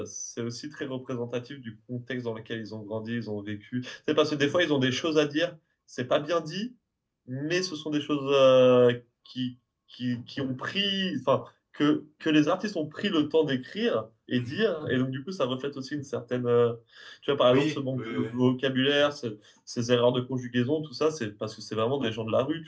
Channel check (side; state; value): both; identical; correlation 1.00